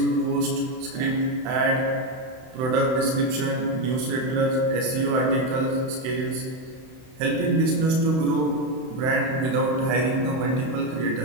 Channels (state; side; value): late; left; 31 ms